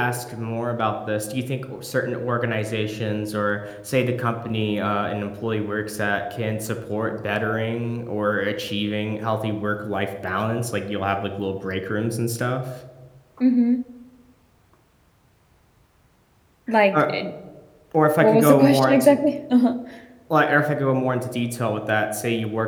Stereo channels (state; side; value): identical; both; correlation 1.00